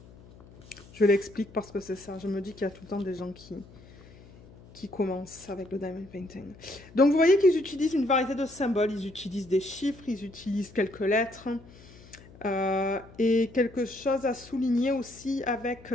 Je l'explique parce que c'est ça, je me dis qu'il y a tout le temps des gens qui commencent avec le diamond painting. Donc vous voyez qu'ils utilisent une variété de symboles, ils utilisent des chiffres, ils utilisent quelques lettres, et quelque chose à souligner aussi avec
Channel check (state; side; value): noise; left; hum, 22 dB below the sound